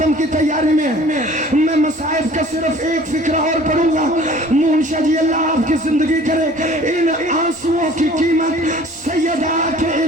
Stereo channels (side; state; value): both; normal; correlation 0.49